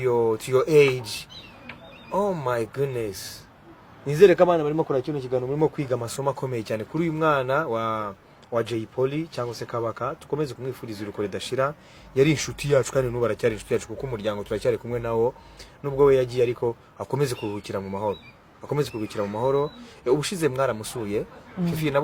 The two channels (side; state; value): both; identical; correlation 1.00